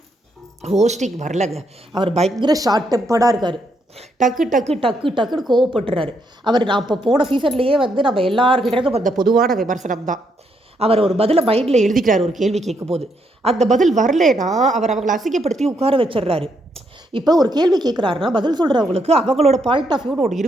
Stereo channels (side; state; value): both; normal; correlation 0.76